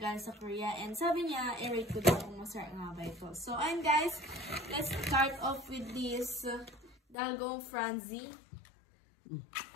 sa Korea. And sabi niya, i-rate ko daw kung masarap nga ba ito. So ayun guys, let's start off with this Dalgong Franzi.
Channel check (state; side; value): drops out; right; at 7.2 s